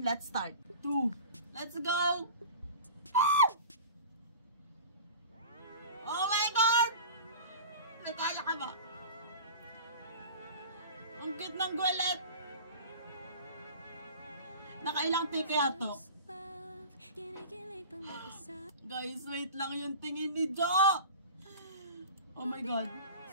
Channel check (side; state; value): both; inverted; correlation -0.37